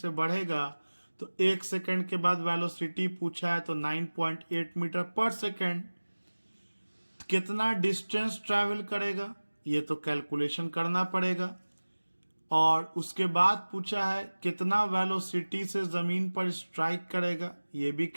बढ़ेगा। तो 1 सेकंड के बाद वेलोसिटी पूछा है तो 9.8 मीटर पर सेकंड। कितना डिस्टेंस ट्रैवल करेगा ये तो कैलकुलेशन करना पड़ेगा। और उसके बाद पूछा है कितना वेलोसिटी से जमीन पर स्ट्राइक करेगा, ये भी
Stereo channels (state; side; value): inverted; both; correlation -1.00